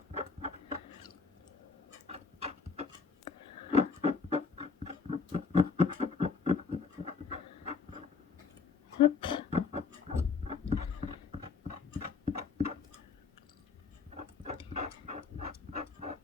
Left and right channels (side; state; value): right; quieter; 5.1 dB